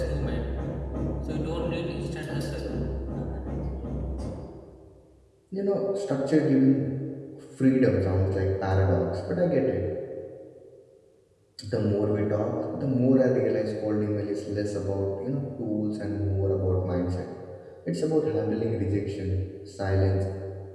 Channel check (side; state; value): both; identical; correlation 1.00